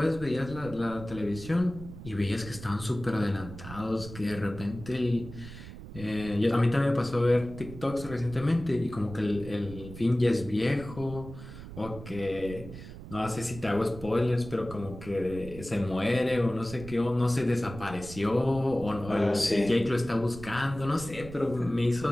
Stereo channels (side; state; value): right; noise; rumble, 13 dB below the sound